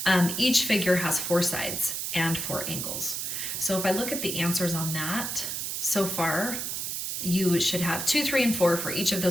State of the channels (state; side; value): noise; right; hiss, 3 dB below the sound